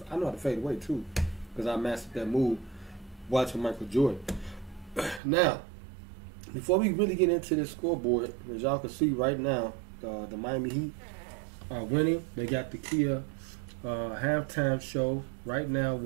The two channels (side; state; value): left; drops out; at 5.2 s